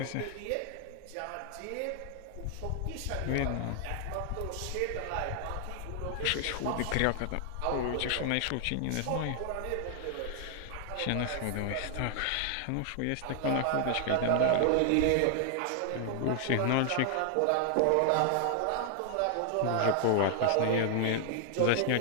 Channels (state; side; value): different; both; correlation 0.00